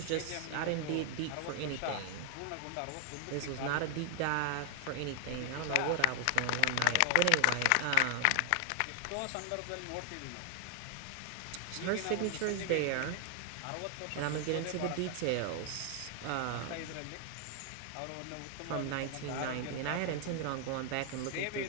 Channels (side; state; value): both; different; correlation 0.00